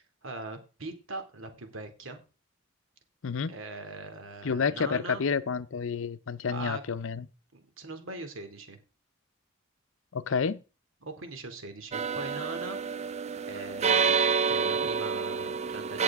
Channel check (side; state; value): both; normal; correlation -0.08